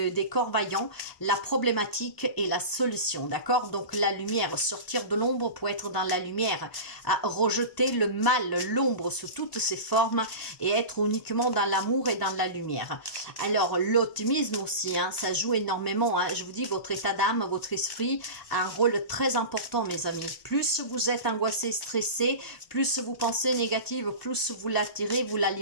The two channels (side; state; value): right; late; 1.0 ms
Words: corps vaillants la problématique et la solution, d'accord? Donc la lumière, sortir de l'ombre pour être dans la lumière, à rejeter le mal, l'ombre sous toutes ses formes et être uniquement dans l'amour et dans la lumière. Alors l'optimisme aussi, hein, ça joue énormément, hein. Je vous dis, votre état d'âme, votre esprit a un rôle très important, mes amis. Plus vous êtes angoissé, stressé, plus vous pensez négative, plus vous l'attirez, vous